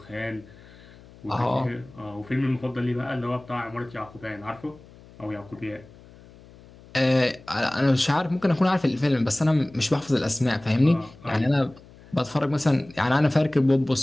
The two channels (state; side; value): noise; left; hum, 23 dB below the sound